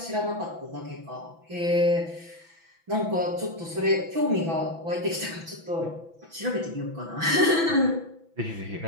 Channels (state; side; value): late; left; 6.0 ms